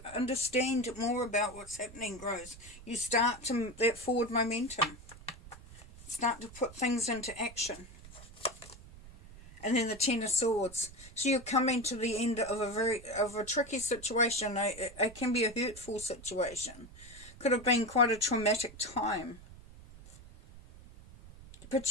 understand more about what's happening grows, you start to, that forward momentum. Start to put things into action. And then the Ten of Swords. So you're coming to the end of a tricky situation. It can be a hurtful situation. Could have been quite a traumatic time.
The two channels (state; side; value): noise; right; rumble, 18 dB below the sound